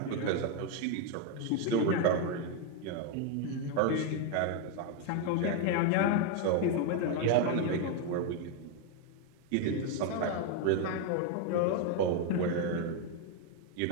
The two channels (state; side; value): different; both; correlation 0.01